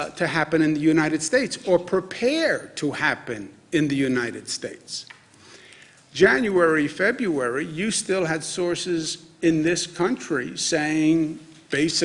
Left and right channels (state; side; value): identical; both; correlation 1.00